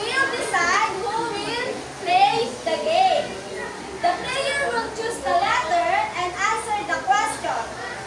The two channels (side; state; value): both; identical; correlation 1.00